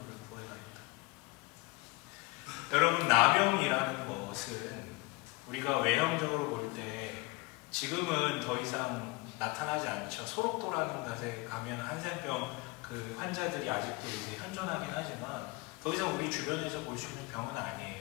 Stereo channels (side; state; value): right; quieter; 24.1 dB